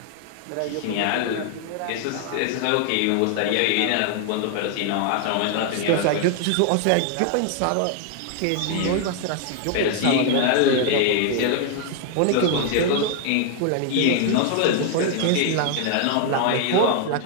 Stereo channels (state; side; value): different; both; correlation 0.00